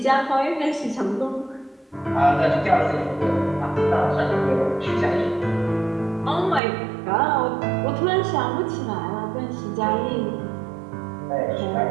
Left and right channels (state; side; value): drops out; left; at 6.6 s